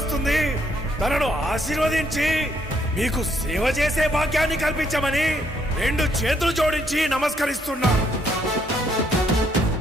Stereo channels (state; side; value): normal; both; correlation 0.71